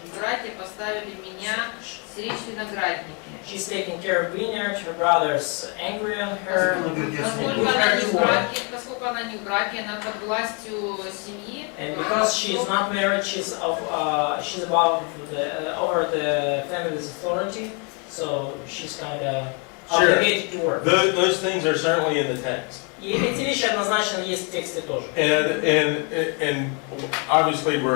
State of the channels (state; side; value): quieter; right; 35.2 dB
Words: братья поставили меня стеречь виноградники. She's taking care of vineyard. Her brother's angry on her. Поскольку она не в браке, она под властью семьи. And because she is not married, she's above over the family's authority. So she's kind of obligated to work. Those things are certainly in the text. И эти вещи однозначно есть в тексте тоже. And obviously